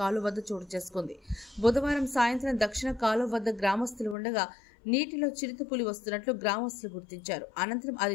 వద్ద చోటు చేసుకుంది. బుధవారం సాయంత్రం దక్షిణ కాలువ వద్ద గ్రామస్తులు ఉండగా నీటిలో చిరుతపులి వస్తున్నట్లు గ్రామస్తులు గుర్తించారు. అనంతరం అది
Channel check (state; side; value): drops out; right; at 4.2 s